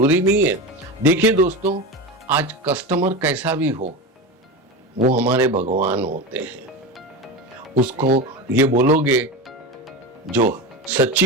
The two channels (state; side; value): normal; both; correlation 0.23